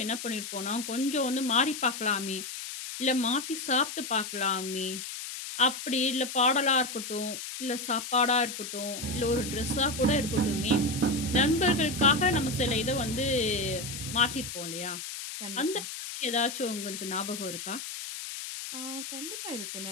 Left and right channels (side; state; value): left; noise; hiss, 8 dB below the sound